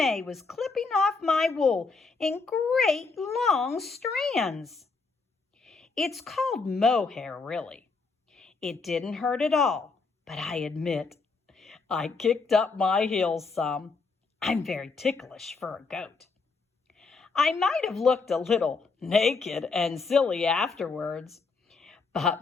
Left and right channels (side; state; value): right; quieter; 4.4 dB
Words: was clipping off my wool in great long strands. It's called mohair, really. It didn't hurt at all, but I admit I kicked up my heels some. I'm very ticklish for a goat. I might have looked a little naked and silly afterwards,